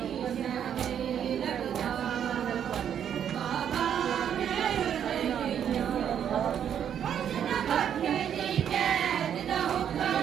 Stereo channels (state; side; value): quieter; left; 9.0 dB